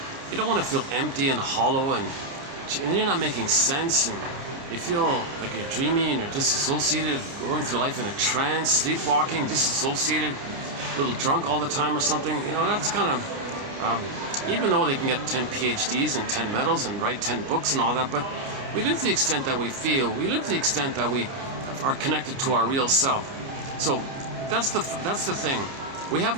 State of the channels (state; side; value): late; left; 29 ms